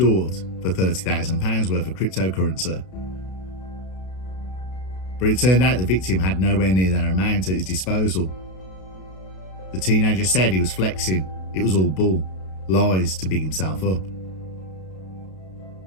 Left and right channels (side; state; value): right; late; 32 ms